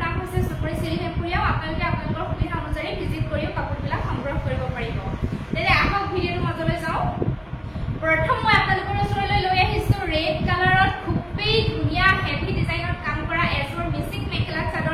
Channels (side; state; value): both; identical; correlation 1.00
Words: নাম হৈছে সোণমণি সিল্ক এম্পোৰিয়াম আপোনালোকে আপোনালোকৰ সুবিধা অনুযায়ী ভিজিট কৰিও কাপোৰবিলাক সংগ্ৰহ কৰিব পাৰিব তেনে আহক ভিডিঅ'ৰ মাজলৈ যাওঁ প্ৰথম মই আপোনালোকৰ ওচৰলৈ লৈ আহিছো ৰেড কালাৰত খুবেই ধুনীয়া হেভি ডিজাইনত কাম কৰা এজৰ মিচিং মেখেলা